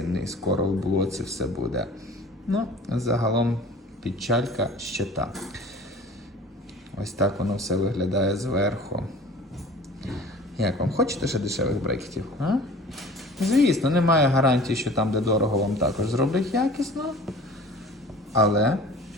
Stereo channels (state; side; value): normal; both; correlation 0.44